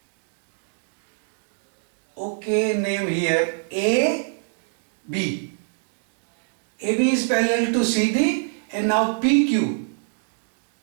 Okay, name here AB. AB is parallel to CD, and now PQ.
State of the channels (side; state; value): left; silent; digital silence